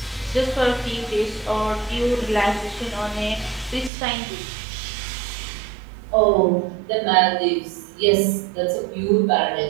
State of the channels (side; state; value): left; drops out; at 3.9 s